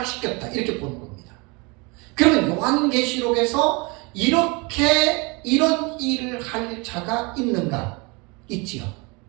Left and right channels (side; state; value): left; quieter; 28.3 dB